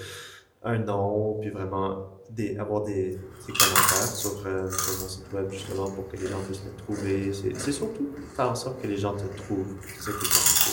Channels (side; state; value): both; identical; correlation 1.00